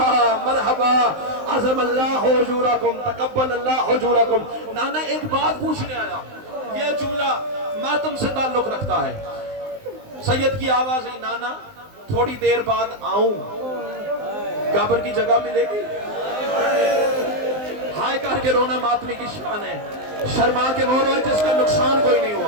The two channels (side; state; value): left; late; 19 ms